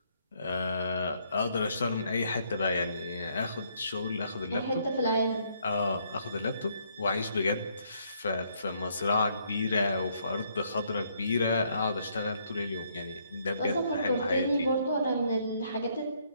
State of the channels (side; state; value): both; inverted; correlation -0.70